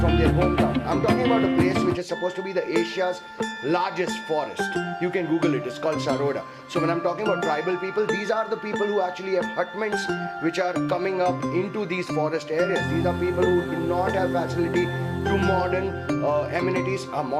their hometown. I'm talking about a place which is supposed to be the Asia's largest forest. You can Google it, it's called Saroda. So when I'm talking about tribal people, these are the people who actually have hutments which are coming up into these forest areas. These are people who do not have facility to modern amenities.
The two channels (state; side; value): identical; both; correlation 1.00